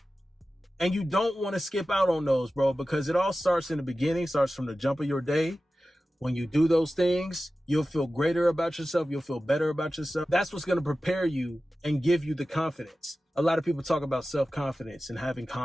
And you don't want to skip out on those, bro, because it all starts in the beginning, starts from the jump of your day. When you do those things, you'll feel greater about yourself. You'll feel better about yourself. That's what's going to prepare you and give you the confidence. A lot of people talk about self-confidence and having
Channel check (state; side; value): normal; both; correlation 0.94